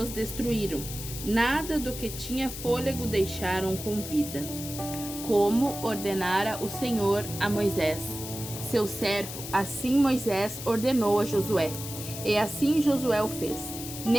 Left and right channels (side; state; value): left; noise; hiss, 9 dB below the sound